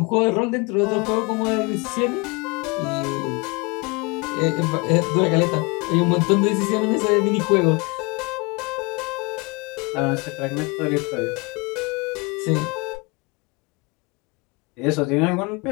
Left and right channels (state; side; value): quieter; right; 28.1 dB